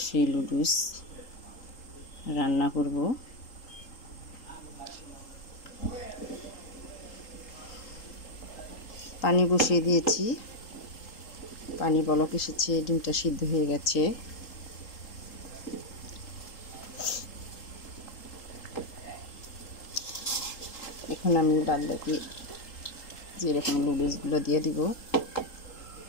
সেই লুডুস রান্না করব। পানি বসিয়ে দিয়েছি, পানি বলক এসেছে, ডিমটা সিদ্ধ হয়ে গেছে। এখন আমি বাদ বাকি যেরকম লুডুসগুলো দিয়ে দিব।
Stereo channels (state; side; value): late; right; 3.8 ms